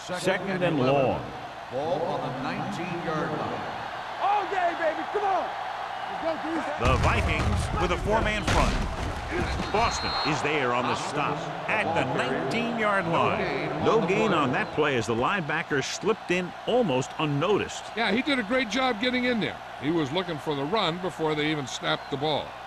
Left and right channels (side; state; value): both; identical; correlation 1.00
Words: Second and long. Ball on the 19-yard line. All day, baby. Come on. Let's go, D. The Vikings with a 4-man front. Boston is there on the stop at the 19-yard line. No gain on that play as the linebacker slipped in almost unnoticed. Yeah, he did a great job getting in there. He was looking for the run before they even snapped the ball.